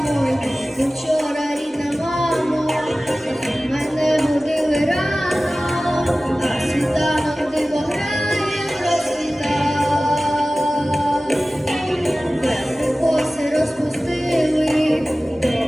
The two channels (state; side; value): normal; both; correlation 0.97